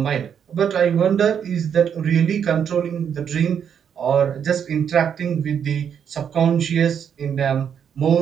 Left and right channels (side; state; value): left; quieter; 8.0 dB